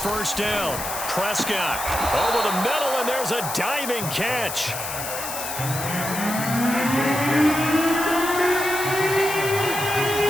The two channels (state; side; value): noise; left; hiss, 6 dB below the sound